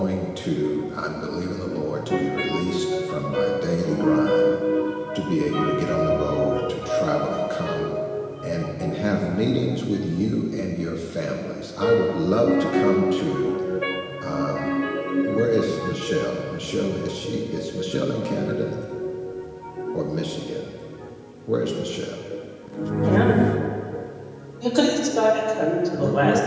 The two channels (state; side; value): identical; both; correlation 1.00